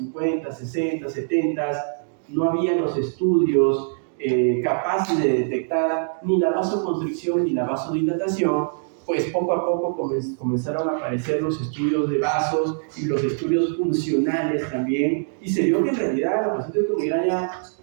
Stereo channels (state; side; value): silent; left; digital silence